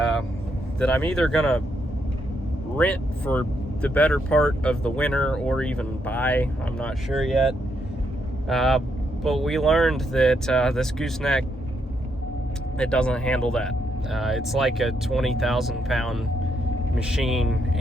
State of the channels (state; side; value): normal; both; correlation 0.78